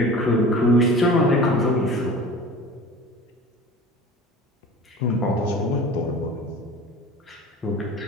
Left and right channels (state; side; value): normal; both; correlation 0.38